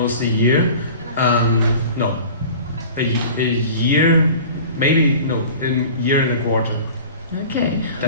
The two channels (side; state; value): both; inverted; correlation -0.41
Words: a year. No. A year, maybe, no, a year and a quarter. Okay.